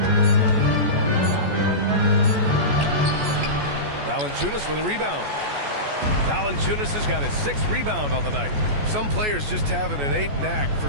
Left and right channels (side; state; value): left; late; 14 ms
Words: Valanciunas with a rebound. Valanciunas has got his 6th rebound on the night. Some players just have an innate knack for